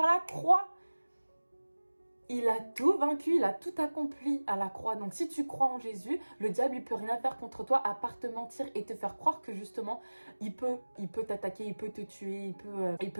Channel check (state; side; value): inverted; both; correlation -1.00